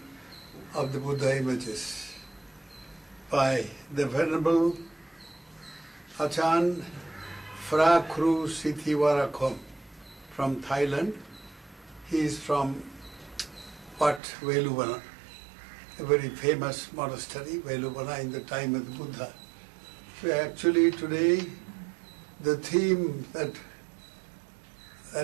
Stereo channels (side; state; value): left; drops out; at 14.2 s